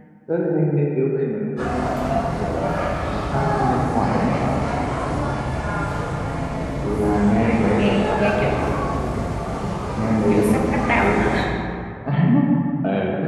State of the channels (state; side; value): identical; both; correlation 1.00